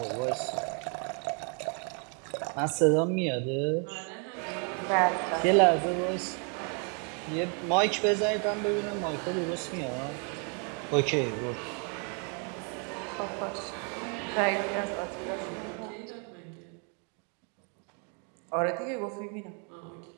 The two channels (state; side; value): quieter; left; 38.5 dB